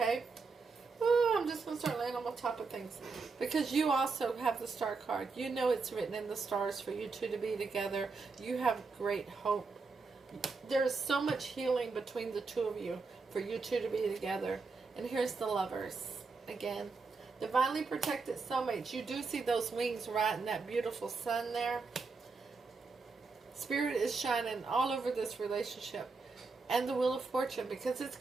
Oh, I'm just going to start laying on top of things. Because you also have the Star card. You know it's written in the stars for you two to be together. You have great hope. There's so much healing between the two of you for you two to be together. And here's the Lovers. Again, divinely protected soulmates. You do see those wings right in that beautiful sun there. Spirit is shining all over this relationship. And the Wheel of Fortune, because it's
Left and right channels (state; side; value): quieter; left; 4.4 dB